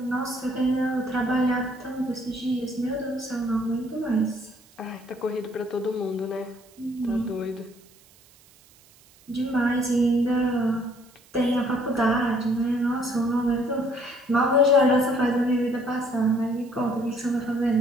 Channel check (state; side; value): noise; right; hiss, 28 dB below the sound